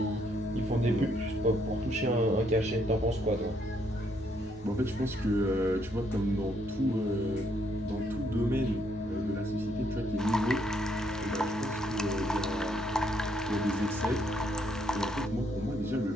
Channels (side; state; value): both; normal; correlation 0.72